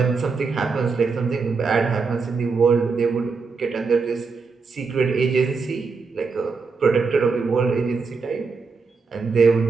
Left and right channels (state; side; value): quieter; left; 4.7 dB